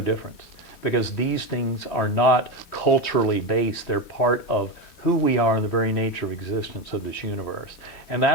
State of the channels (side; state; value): right; late; 4.9 ms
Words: difference, because these things are not culturally based. They're part of who we are and the very nature of existence of this universe. And